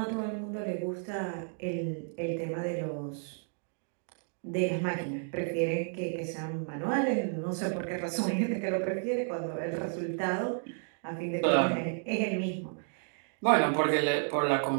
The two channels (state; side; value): silent; left; 56 dB below the other